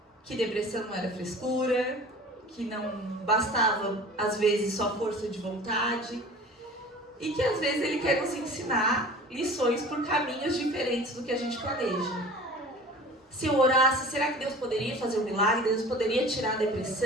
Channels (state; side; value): normal; both; correlation 0.41